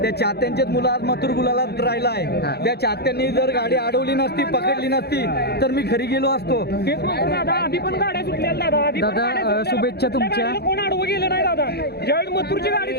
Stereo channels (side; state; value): right; late; 0.47 ms